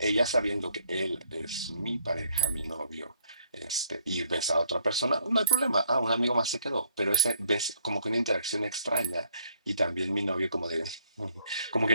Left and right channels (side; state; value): both; inverted; correlation -0.66